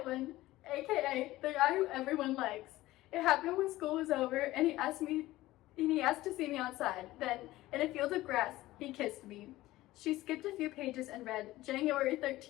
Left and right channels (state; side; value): quieter; right; 17.0 dB